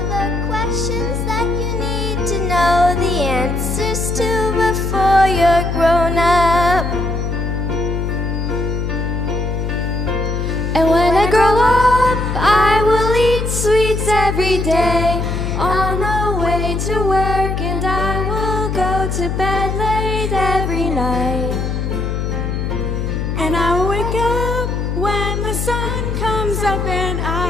the questions that you need to know the answers to before you're grown up. And when I grow up, I will eat sweets every day on the way to work, and I will go to bed late every night. And I will wake up when the sun comes up, and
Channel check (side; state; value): left; noise; hum, 2 dB below the sound